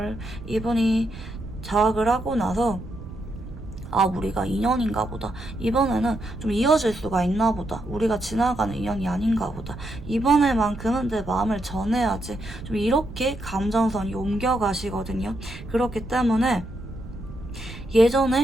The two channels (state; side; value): noise; right; rumble, 14 dB below the sound